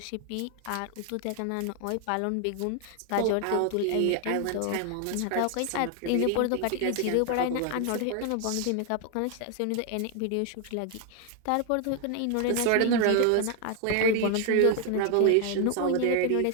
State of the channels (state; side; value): different; both; correlation 0.01